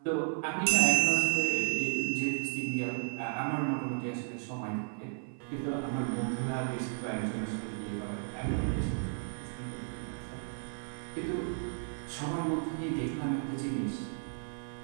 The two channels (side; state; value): left; silent; 55 dB below the other